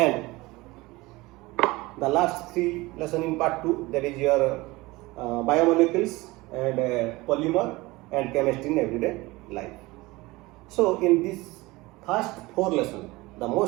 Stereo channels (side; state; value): left; quieter; 21.3 dB